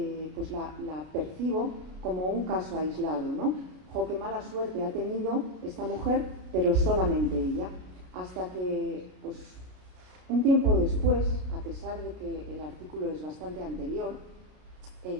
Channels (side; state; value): left; late; 32 ms